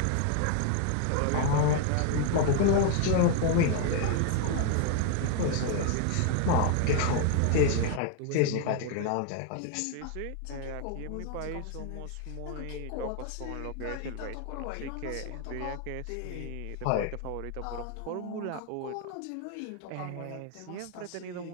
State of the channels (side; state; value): both; different; correlation 0.00